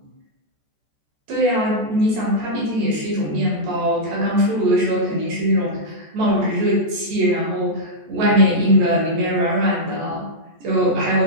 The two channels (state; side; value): late; left; 14 ms